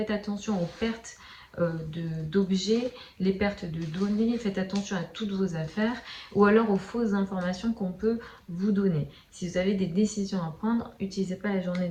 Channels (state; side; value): identical; both; correlation 1.00